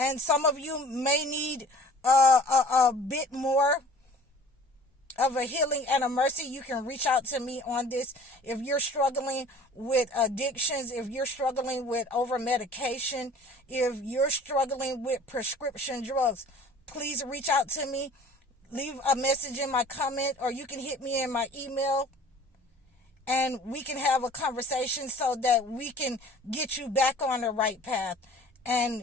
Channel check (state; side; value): normal; both; correlation 0.48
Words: some of you may need a bit more of a healing and a mercy. You can reach out to me on this. If you're struggling with addictions, if you're struggling with over medication, if you're struggling with prescription drugs, please reach out to me. Leave a message in my comment, or you can hit me in my email, and we can have a conversation so that we can get you back on the right path